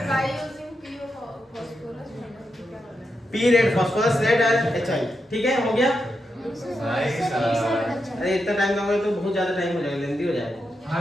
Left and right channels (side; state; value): both; normal; correlation 0.86